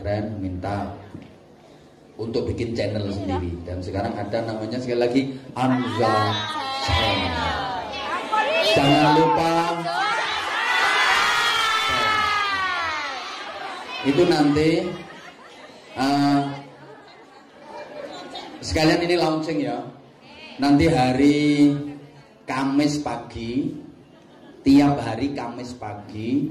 minta untuk bikin channel sendiri. Dan sekarang ada namanya sekali lagi Anza Channel. Jangan lupa itu nanti sekalian ini launching ya. Nanti hari Kamis pagi, tiap hari Kamis pagi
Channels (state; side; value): identical; both; correlation 1.00